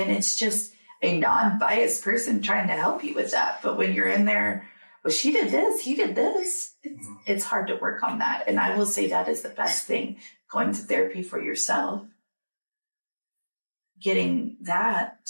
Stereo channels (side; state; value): both; inverted; correlation -1.00